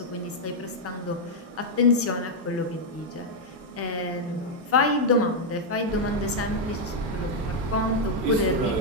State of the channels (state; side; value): normal; both; correlation -0.01